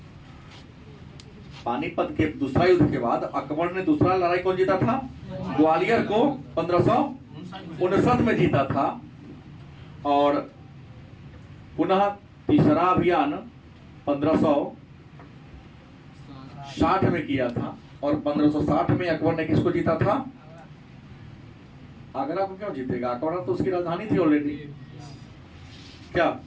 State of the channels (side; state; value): both; identical; correlation 1.00